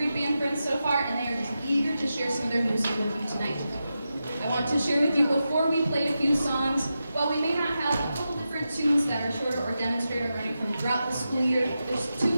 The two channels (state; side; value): inverted; both; correlation -0.90